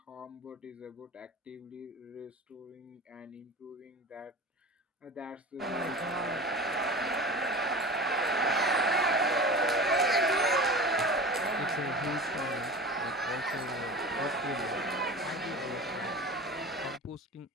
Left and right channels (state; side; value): normal; both; correlation 0.34